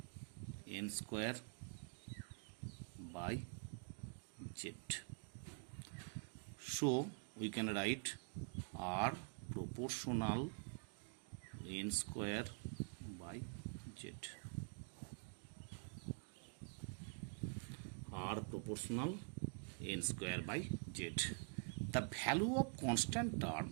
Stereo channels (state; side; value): quieter; left; 38.4 dB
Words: n square by z. So we can write r proportional n square by z. R proportional n square by z. The value of constant term,